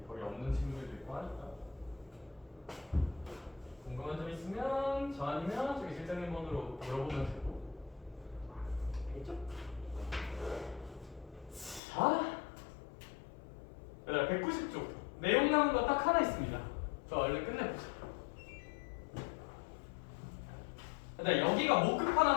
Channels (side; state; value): right; drops out; at 11.8 s